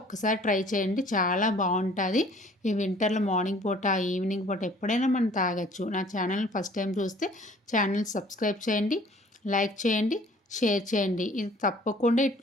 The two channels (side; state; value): both; normal; correlation 0.54